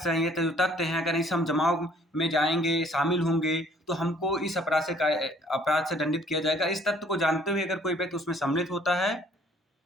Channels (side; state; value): both; normal; correlation 0.59